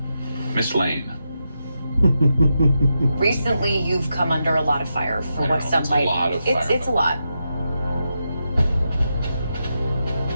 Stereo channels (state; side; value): inverted; both; correlation -0.87